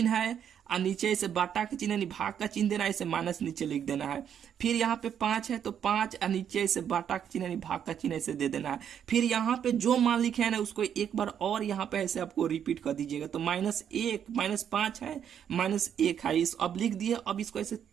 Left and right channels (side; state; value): left; quieter; 8.8 dB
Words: है और नीचे इसे बाटा का चिन्ह यानी भाग का चिन्ह देना है, इसे माइनस नीचे लिख देना है। फिर यहाँ पे 5 है तो 5 और नीचे इसे बाटा का चिन्ह यानी भाग का चिन्ह इसे दे देना है। फिर यहाँ पे जो मान लिखे है ना उसको एक बार और यहाँ पे ऐसे आपको रिपीट कर दीजिएगा। तो -1 -5 है, -1 है, इस अब लिख दिए। अब इसको ऐसे